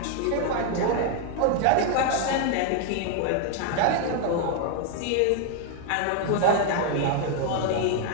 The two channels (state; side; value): different; both; correlation 0.00